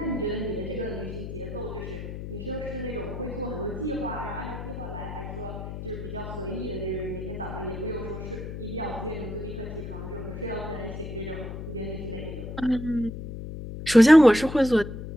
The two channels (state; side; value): noise; left; hum, 8 dB below the sound